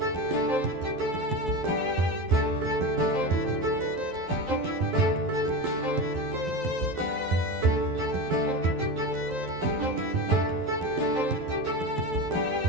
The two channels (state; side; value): late; left; 12 ms